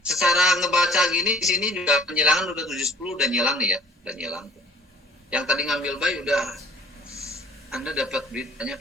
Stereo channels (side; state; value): both; normal; correlation 0.50